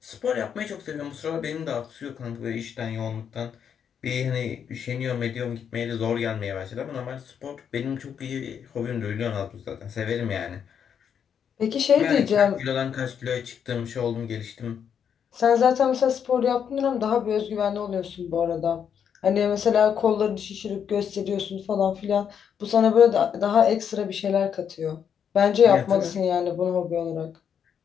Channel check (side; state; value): right; quieter; 7.9 dB